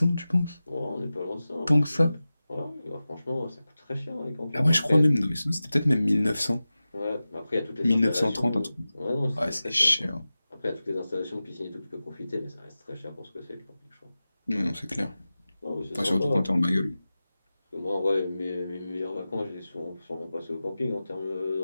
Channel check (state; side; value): inverted; both; correlation -0.95